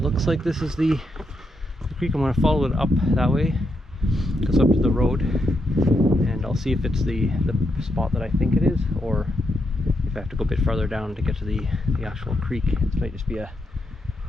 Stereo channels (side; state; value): both; normal; correlation 0.81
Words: like this is the creek. I'm going to follow it up that way. It goes up to the road, and I'll see if it's the spot that I think it is, or if I have to go a bit farther down to get to the actual creek. It might just be a